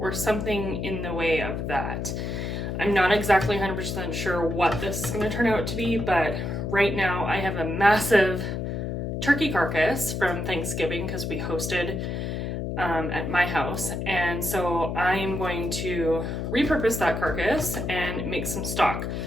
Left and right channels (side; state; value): left; noise; hum, 3 dB below the sound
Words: something in the way of that. I'm not exactly 100% sure what this is going to turn out to be, but right now I have a massive turkey carcass from Thanksgiving because we hosted at my house, and so I'm going to repurpose that carcass and make some stock.